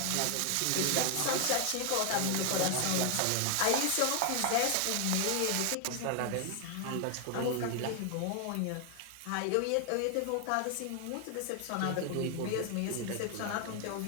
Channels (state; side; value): different; both; correlation 0.00